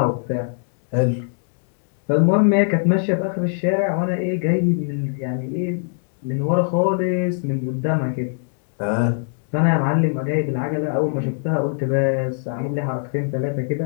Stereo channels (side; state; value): right; silent; digital silence